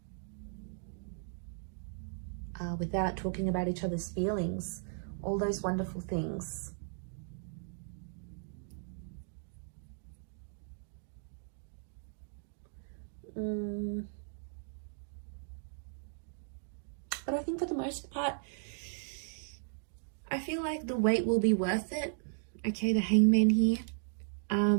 Without talking about each other's feelings, all those wonderful things. But I think for the most part, I feel like the wait will be worth it. Okay, the Hangman here.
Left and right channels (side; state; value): left; silent; digital silence